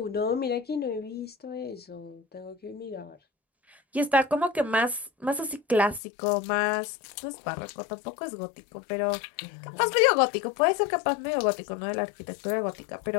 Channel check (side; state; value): right; drops out; at 6.0 s